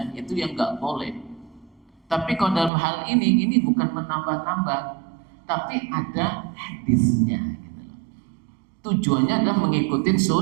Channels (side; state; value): left; drops out; at 2.7 s